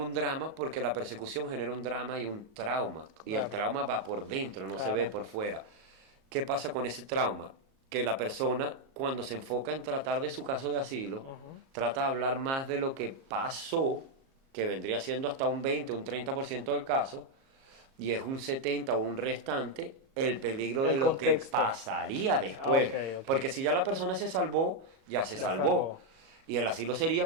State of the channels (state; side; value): late; left; 37 ms